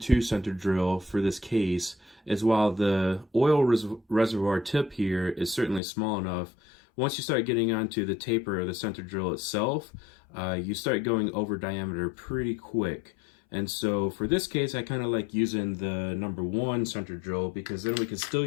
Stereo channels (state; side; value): drops out; right; at 5.8 s